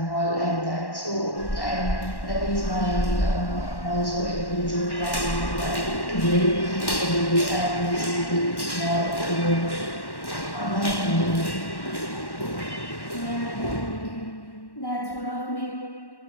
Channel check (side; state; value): right; late; 1.1 ms